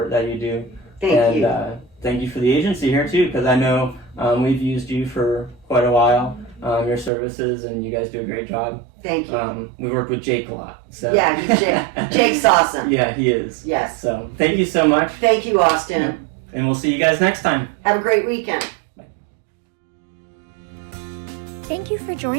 that you do. Thank you. Thank you for the agency here too, because I know we've used you for quite a while, your services, and you guys do a great job. Thank you. We worked with Jake a lot. So. Yeah, Jake's awesome. Yeah, he is. Yes. So thank you so much. Thank you, Austin. And we'll see you guys next time. Have a great weekend. Thank you for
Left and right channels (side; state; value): left; drops out; at 7.1 s